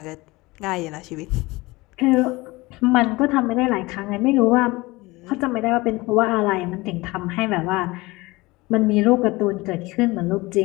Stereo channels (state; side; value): quieter; right; 21.9 dB